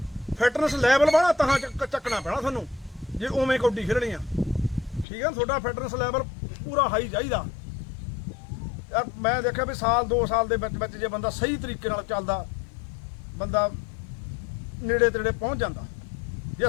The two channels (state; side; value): drops out; right; at 5.1 s